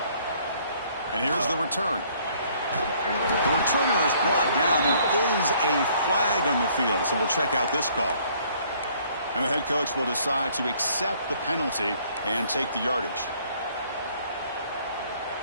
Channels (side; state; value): both; inverted; correlation -0.61